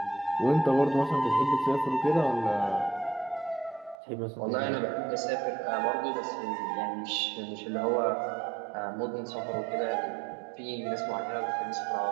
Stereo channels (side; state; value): left; drops out; at 4.0 s